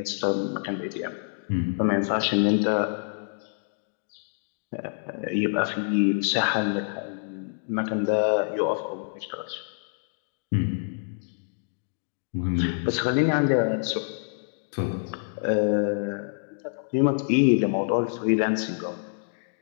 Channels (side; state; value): right; silent; digital silence